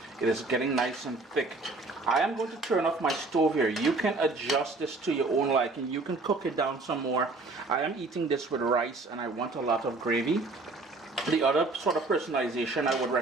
it is getting nice and thick. I am going to turn off my stove here. You can adjust this to your own liking. You can cook it down some more. I am eating this with rice and I want a lot of gravy. The other sort of personalization I would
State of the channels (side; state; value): left; quieter; 3.5 dB